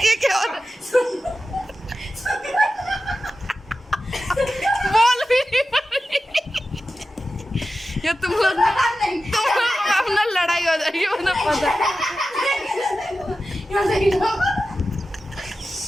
क्या हो रहा है? बोल भी नहीं पा रही। ये तुम लोग अपना लड़ाई हो जाएगी मुझे पता है। यहाँ से ही लो।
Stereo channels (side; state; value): both; normal; correlation 0.93